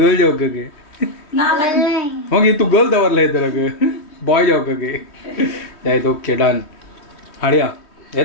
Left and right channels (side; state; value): right; late; 3.1 ms